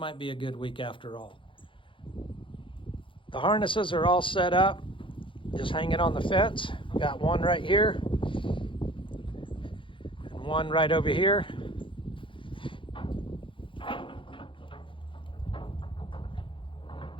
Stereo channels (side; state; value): right; late; 0.25 ms